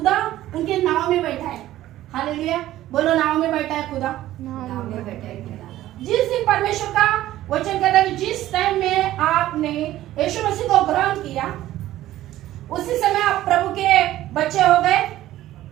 उनके नाव में बैठा है। हालेलुया, बोलो नाव में बैठा है खुदा। जिस दिन परमेश्वर का वचन कहता है जिस टाइम में आपने यीशु मसीह को ग्रहण किया, उसी समय आप प्रभु के बच्चे हो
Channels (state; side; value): quieter; left; 14.3 dB